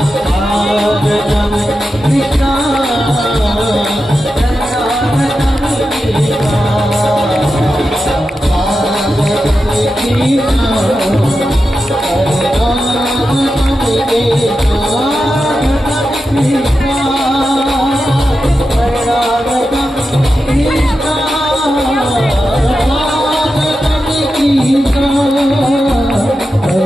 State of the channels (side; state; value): both; normal; correlation 0.90